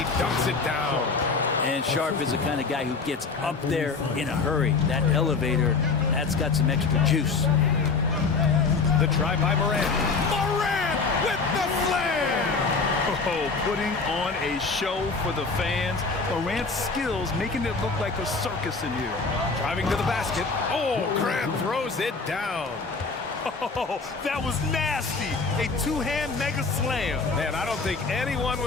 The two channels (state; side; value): quieter; right; 4.4 dB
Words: dunks it down. And Sharp is the kind of guy who gets up there in a hurry. That elevator, that's got some extra juice. The try by Morant. Morant with the slam! Oh, putting on a show for the fans. Morant's skills making it look like a circus in here. Driving to the basket. Oh, Grant throws it down. Oh, that was nasty. A two-hand mega slam. Man, I don't think anyone